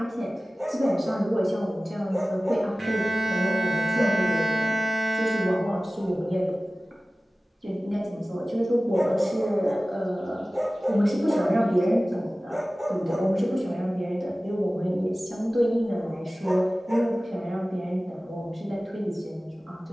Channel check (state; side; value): normal; both; correlation 0.97